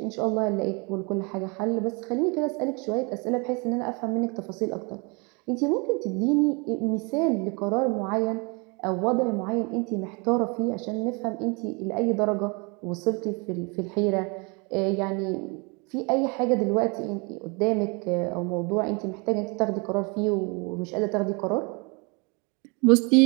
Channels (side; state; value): left; quieter; 31.0 dB